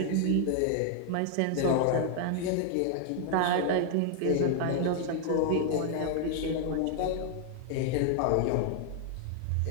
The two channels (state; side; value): different; both; correlation 0.00